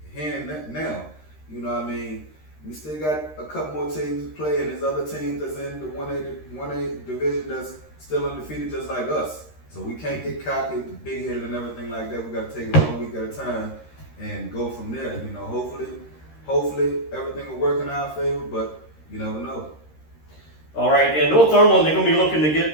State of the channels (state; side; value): late; right; 13 ms